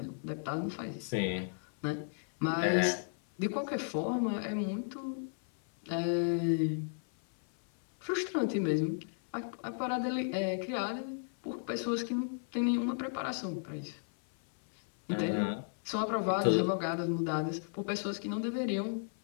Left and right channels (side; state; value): right; silent; 55 dB below the other